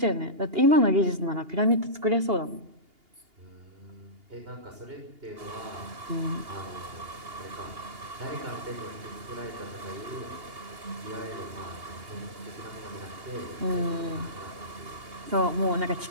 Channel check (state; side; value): late; left; 2.8 ms